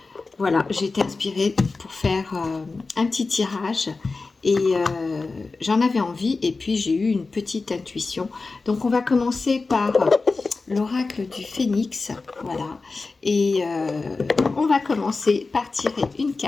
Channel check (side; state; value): right; quieter; 3.9 dB